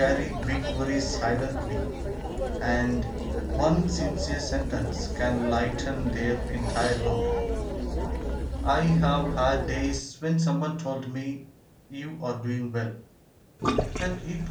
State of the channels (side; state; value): both; identical; correlation 1.00